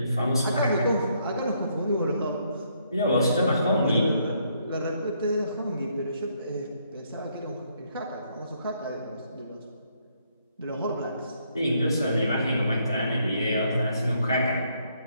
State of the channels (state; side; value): inverted; both; correlation -0.72